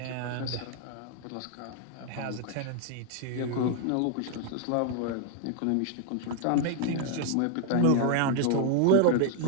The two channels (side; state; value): both; different; correlation 0.00